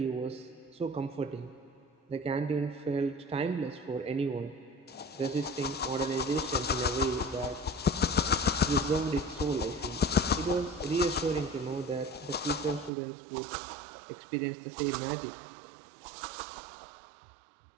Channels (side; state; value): left; drops out; at 12.9 s